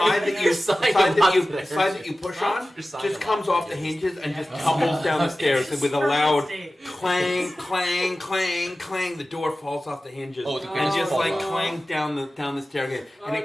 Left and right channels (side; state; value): both; normal; correlation 0.96